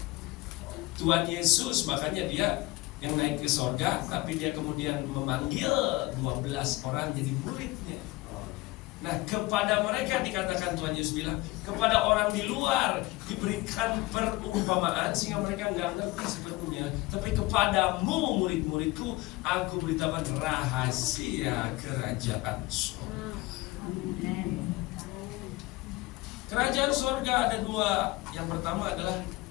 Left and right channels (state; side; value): quieter; right; 20.9 dB